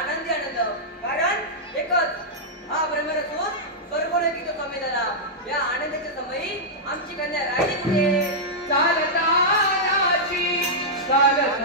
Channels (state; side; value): normal; both; correlation -0.09